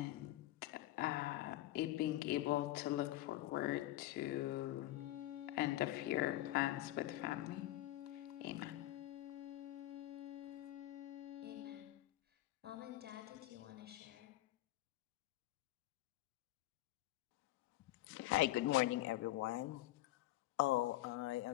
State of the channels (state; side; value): quieter; right; 16.0 dB